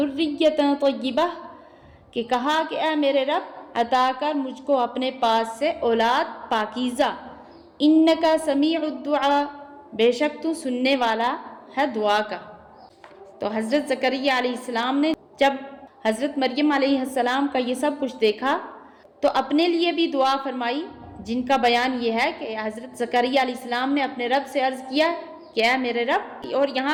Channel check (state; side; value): identical; both; correlation 1.00